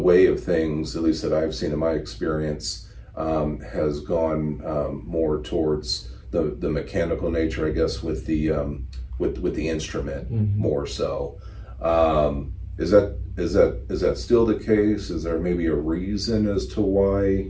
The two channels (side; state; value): both; identical; correlation 1.00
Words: of things, at least that I've seen in my experience, has gone more towards the mechanical nature, I guess, with the instrument more so. Is that still the case? Is there maybe a reason as to why